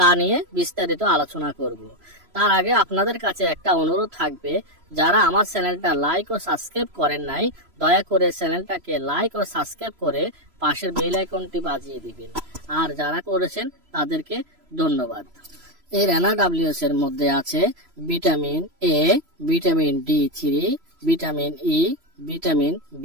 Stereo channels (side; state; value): left; late; 3.0 ms